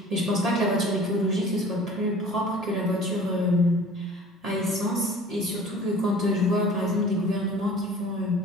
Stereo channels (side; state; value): both; normal; correlation 0.45